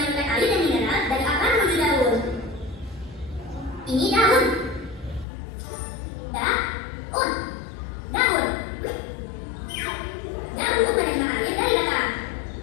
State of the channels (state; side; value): drops out; right; at 5.2 s